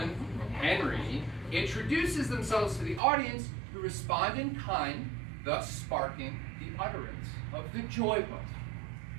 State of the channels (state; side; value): drops out; left; at 3.0 s